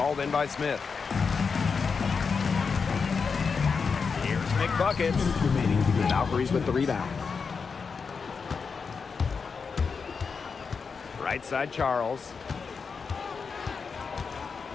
in by Smith. here's McBuckets. Valkyries with the rebound. Right side Charles.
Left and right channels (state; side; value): quieter; right; 5.4 dB